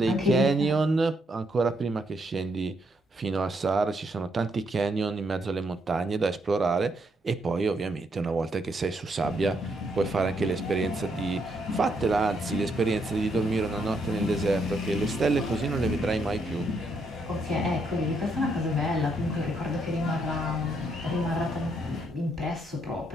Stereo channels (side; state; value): both; normal; correlation 0.75